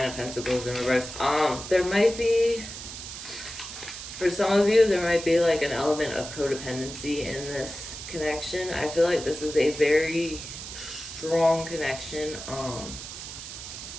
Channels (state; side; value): noise; right; hiss, 10 dB below the sound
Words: of Pentacles in reverse. There might be, for some of you, there might be like an element of codependency in this connection. I feel like this is a very strong connection.